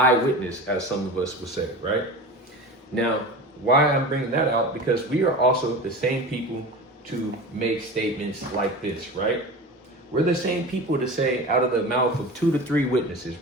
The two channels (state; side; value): normal; both; correlation 0.32